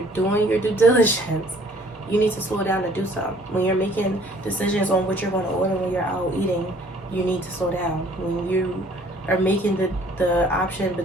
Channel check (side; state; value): both; normal; correlation 0.57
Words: doing your due diligence, you need to slow down to do so. When you're making decisions on what you're going to order when you're out eating, you need to slow down. When you are making the option